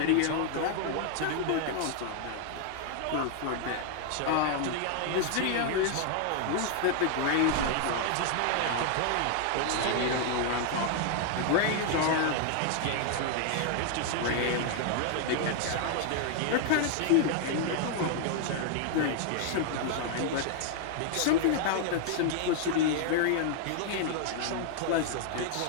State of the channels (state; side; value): different; both; correlation 0.00